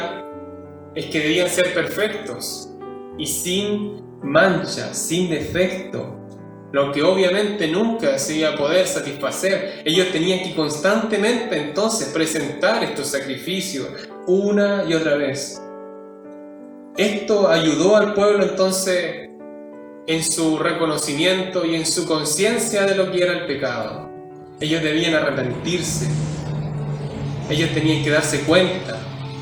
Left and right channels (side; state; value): both; identical; correlation 1.00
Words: es que debían ser perfectos y sin mancha, sin defecto, lo que obviamente nunca se iba a poder satisfacer. Ellos tenían que constantemente entonces presentar estos sacrificios una y otra vez. Esto ayudó al pueblo entonces en su reconocimiento y en su conciencia de lo que era el pecado. Ellos debían arrepentirse. Ellos tenían que darse cuenta